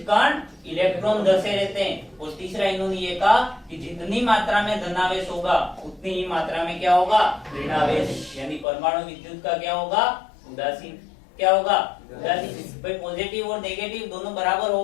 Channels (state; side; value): drops out; right; at 8.7 s